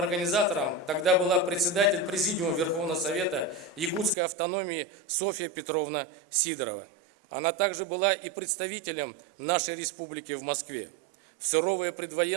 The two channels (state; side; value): drops out; left; at 4.2 s